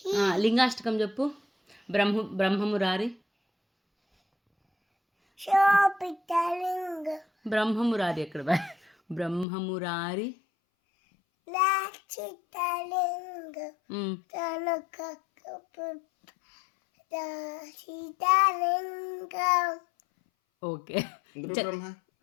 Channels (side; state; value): right; drops out; at 9.5 s